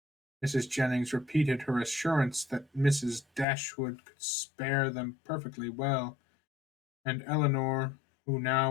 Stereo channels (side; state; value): right; drops out; at 3.5 s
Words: Mrs. Jennings repeated her assurance that Mrs. Dashwood could spare them perfectly well, and Eleanor, who